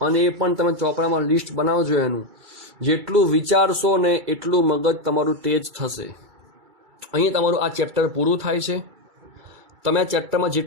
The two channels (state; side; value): late; left; 2.3 ms